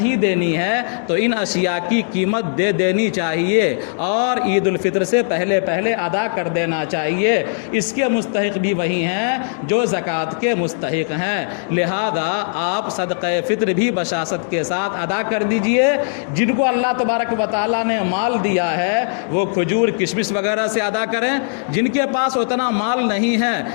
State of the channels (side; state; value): right; silent; digital silence